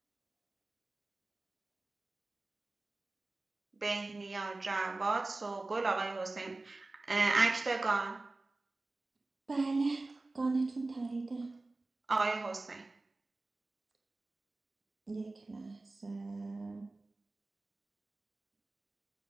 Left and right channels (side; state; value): left; quieter; 3.2 dB